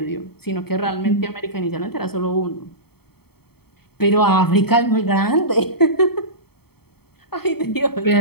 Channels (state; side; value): late; right; 0.96 ms